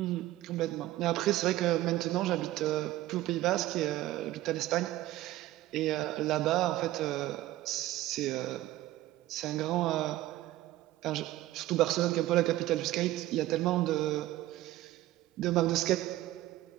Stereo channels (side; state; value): left; quieter; 15.7 dB